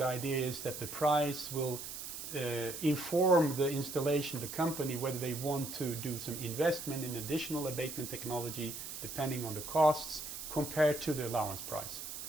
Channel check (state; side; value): noise; right; hiss, 8 dB below the sound